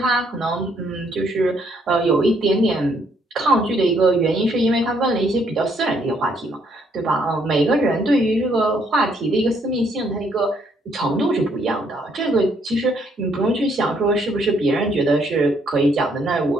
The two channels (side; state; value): both; normal; correlation 0.70